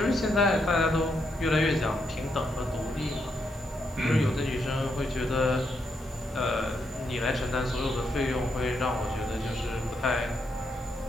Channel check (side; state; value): both; normal; correlation 0.79